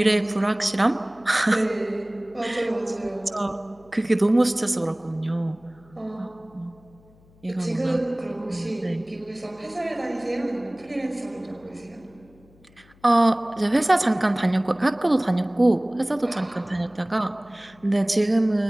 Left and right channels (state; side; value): noise; left; hum, 29 dB below the sound